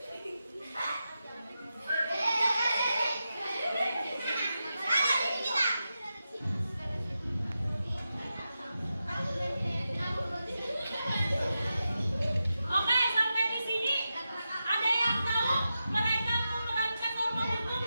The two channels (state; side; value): inverted; both; correlation -0.90